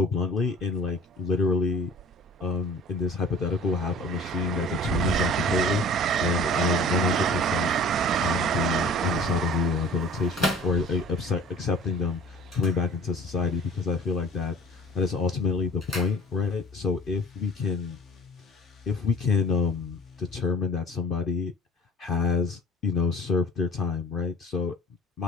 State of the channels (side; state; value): both; normal; correlation 0.44